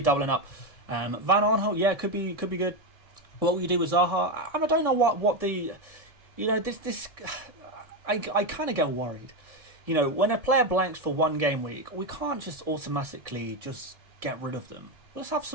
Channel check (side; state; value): left; late; 1.7 ms